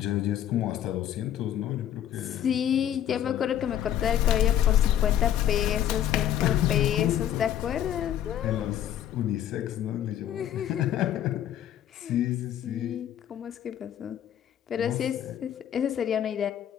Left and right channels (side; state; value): right; quieter; 10.8 dB